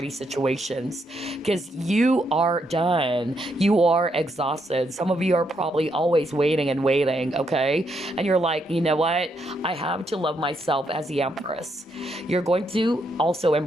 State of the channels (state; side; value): normal; both; correlation 0.77